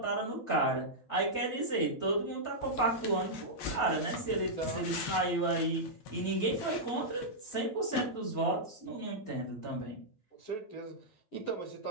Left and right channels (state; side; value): late; right; 9.9 ms